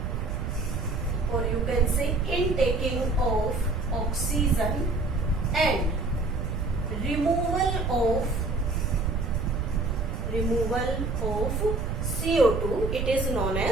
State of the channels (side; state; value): right; noise; rumble, 2 dB below the sound